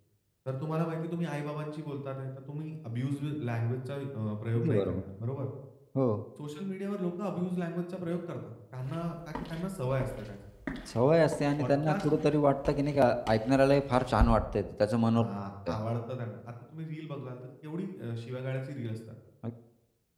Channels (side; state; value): both; identical; correlation 1.00